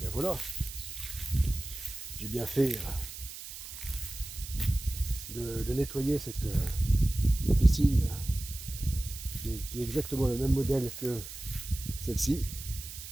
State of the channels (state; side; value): noise; right; hiss, 11 dB below the sound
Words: voilà. J'ai bien fait de nettoyer cette piscine qui est exactement le même modèle que celle-ci,